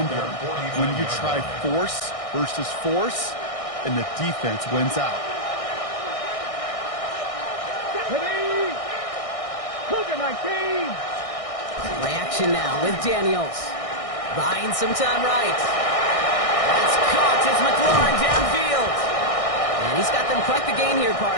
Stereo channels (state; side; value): late; right; 1.6 ms